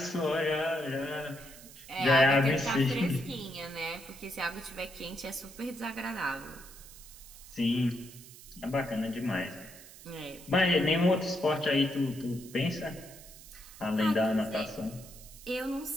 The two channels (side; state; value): right; noise; hiss, 18 dB below the sound